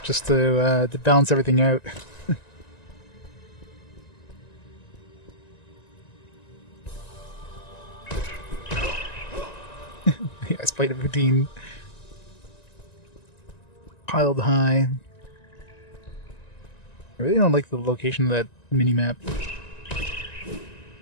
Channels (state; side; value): late; right; 1.9 ms